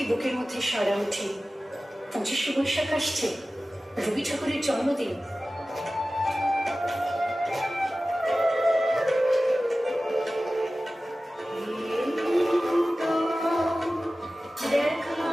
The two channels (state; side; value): normal; both; correlation 0.96